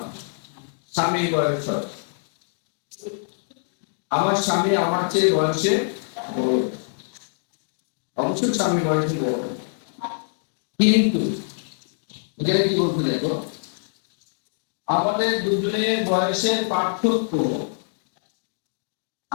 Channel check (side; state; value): right; silent; digital silence